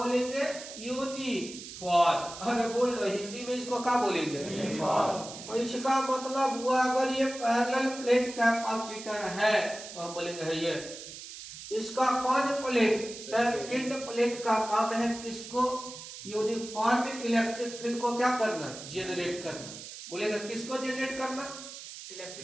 यूनिफॉर्म। अरे बोलना हिंदी में इसको क्या बोलेंगे? यूनिफॉर्म। तो इसका मतलब हुआ अगर ये पैरेलल प्लेट कैपेसिटर है तो हम बोलेंगे है ये। इसका कौन प्लेट? सेकंड प्लेट का काम है किसको? यूनिफॉर्म इलेक्ट्रिक फील्ड को क्या करना? जनरेट करना। बोलेगा किसको जनरेट करना?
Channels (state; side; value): noise; right; hiss, 12 dB below the sound